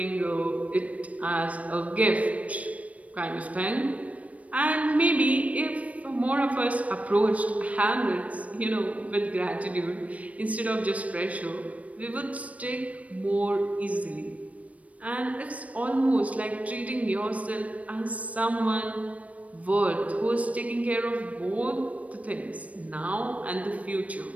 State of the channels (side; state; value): left; late; 0.067 ms